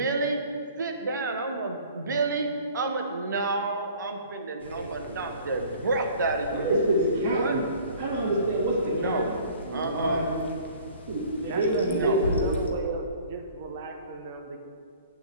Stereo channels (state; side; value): inverted; both; correlation -0.50